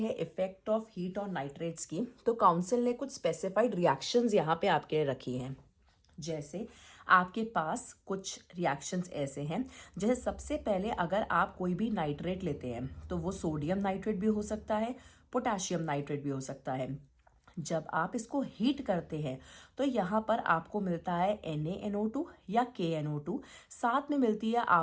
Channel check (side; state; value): both; identical; correlation 1.00